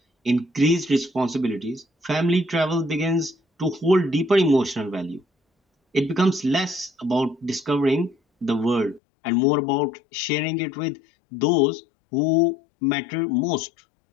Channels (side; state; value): right; drops out; at 9.0 s